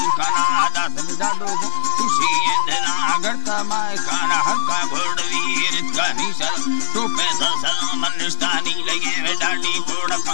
समझाडो खुशी इंदना गड़ता माय काना हल्का घोड़वीर का निशल टोपे सलम निष्ठानी लगे डाडी कोड़क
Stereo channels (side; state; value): right; silent; 64 dB below the other